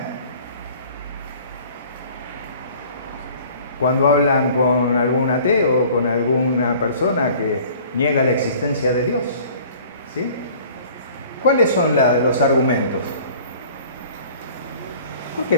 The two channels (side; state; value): both; inverted; correlation -0.50